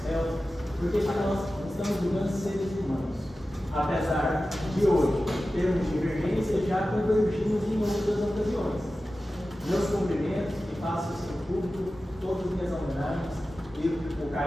réus, porque nós estamos julgando seres humanos. Apesar de hoje termos divergência, já convergimos em outras ocasiões. Meus cumprimentos e faço isso em público, todas as minhas homenagens e o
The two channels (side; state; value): both; normal; correlation 0.94